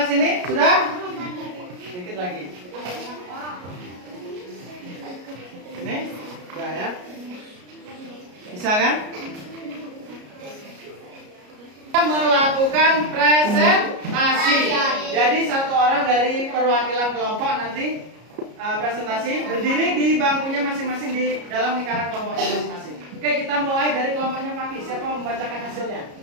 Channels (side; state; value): left; late; 33 ms